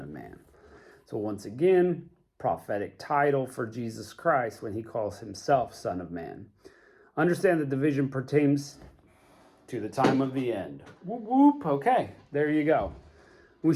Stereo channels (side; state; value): both; identical; correlation 1.00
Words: of Man. So once again, prophetic title for Jesus Christ when he calls himself Son of Man. Understand that the vision pertains to the time of the end. Whoop, whoop. Okay, there you go. We